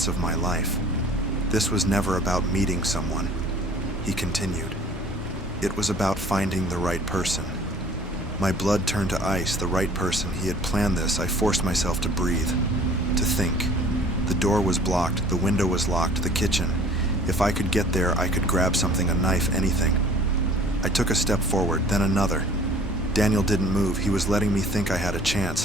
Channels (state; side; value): normal; both; correlation 0.50